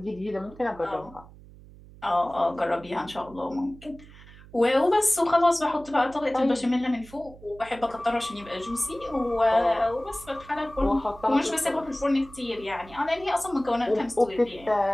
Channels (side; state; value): right; noise; hum, 20 dB below the sound